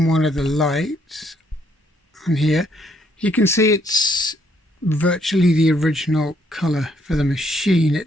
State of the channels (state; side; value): normal; both; correlation 0.70